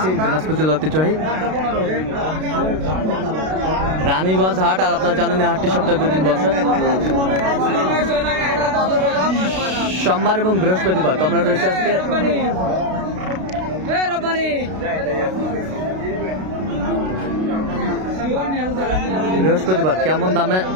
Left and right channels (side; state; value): left; late; 32 ms